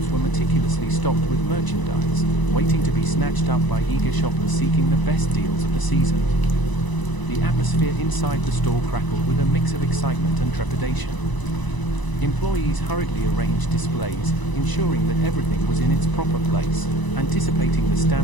were meticulously stocked with merchandise, waiting to be snatched up by eager shoppers seeking the best deals of the season. The atmosphere inside the store crackled with a mix of excitement and trepidation. Employees hurriedly arranged displays, ensuring that everything was in its proper place, anticipating the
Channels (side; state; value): right; late; 1.0 ms